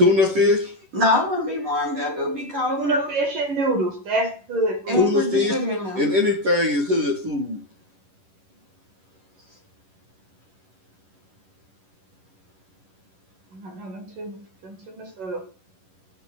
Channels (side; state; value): left; late; 11 ms